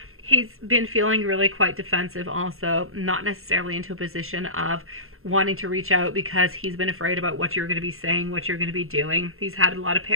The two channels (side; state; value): left; late; 0.62 ms